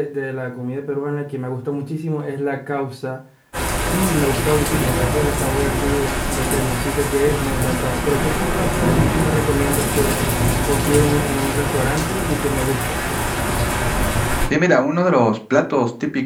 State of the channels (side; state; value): both; identical; correlation 1.00